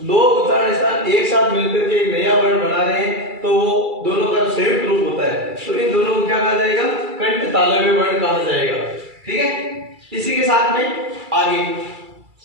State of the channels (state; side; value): late; left; 2.3 ms